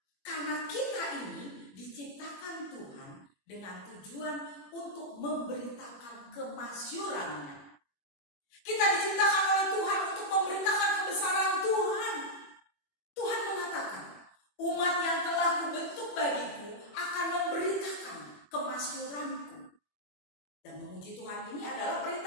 Karena kita ini diciptakan Tuhan dengan tujuan untuk memberitakan kemasyurannya. Kita diciptakan oleh Tuhan untuk memberitakan kebesaran Tuhan. Tuhan mengatakan, umat yang telah kubentuk bagiku akan memberitakan kemasyuranku. Dan memuji Tuhan ini adalah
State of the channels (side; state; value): right; late; 21 ms